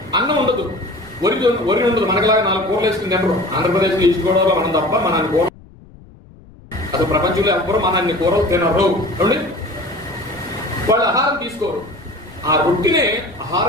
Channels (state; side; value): noise; left; rumble, 23 dB below the sound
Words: అన్నం ఉండదు, వరి ఉండదు. మనకిలాగా 4 కూరలు వేసుకుని తినరు. ఆంధ్రప్రదేశ్లో ఈస్ట్ గోదావరిలో మనం తప్ప మన కూర, అసలు ప్రపంచంలో ఎవ్వరు మన అన్ని కూరలు తినరు. వాళ్ళు ఆహారం తీసుకోరు, ఆ రొట్టినే